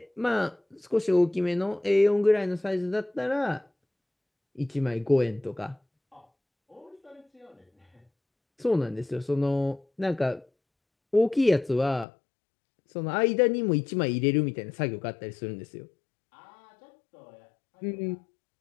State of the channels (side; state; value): right; drops out; at 12.1 s